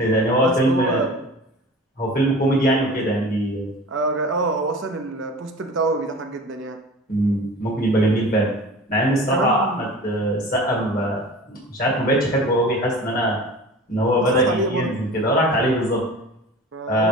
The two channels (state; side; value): normal; both; correlation 0.38